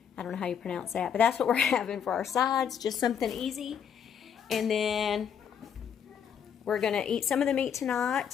I don't know how you pronounce that, but that's what we're having for our sides, just something easy. And then we're going to eat some of the meat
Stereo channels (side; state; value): right; quieter; 8.0 dB